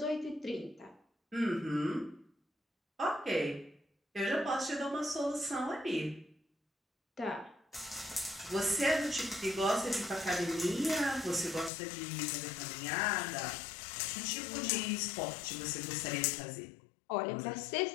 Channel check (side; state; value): right; drops out; at 11.7 s